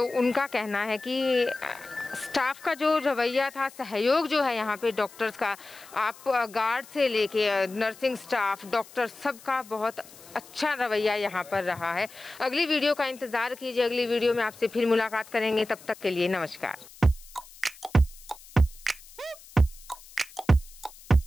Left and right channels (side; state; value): left; noise; hiss, 21 dB below the sound